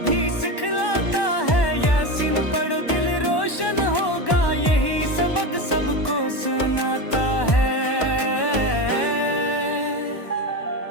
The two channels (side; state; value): right; late; 1.1 ms